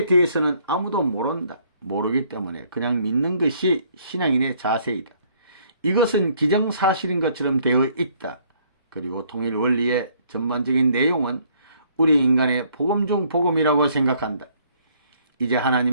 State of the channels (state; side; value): inverted; both; correlation -0.64